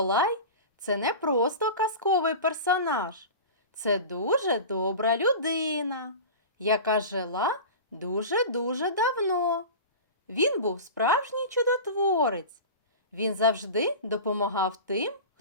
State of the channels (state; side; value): inverted; both; correlation -0.32